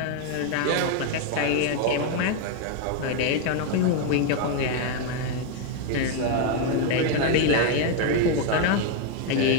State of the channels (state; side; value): different; both; correlation 0.01